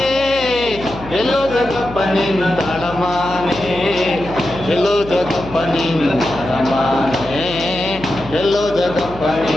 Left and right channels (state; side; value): noise; left; hum, 14 dB below the sound